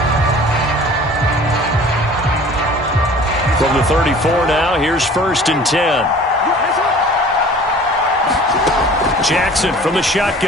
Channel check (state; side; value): normal; both; correlation 0.46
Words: From the 34 now, here's 1st and 10. Jackson from the